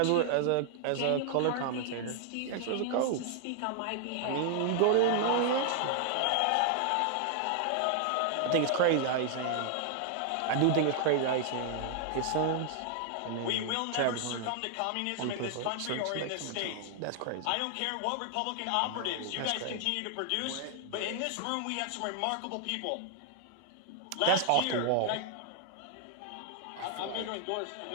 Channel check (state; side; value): different; both; correlation 0.00